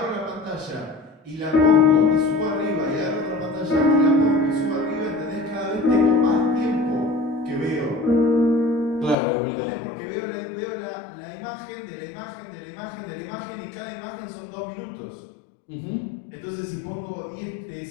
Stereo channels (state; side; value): drops out; right; at 9.2 s